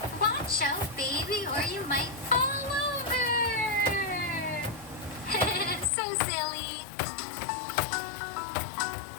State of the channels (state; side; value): drops out; right; at 5.9 s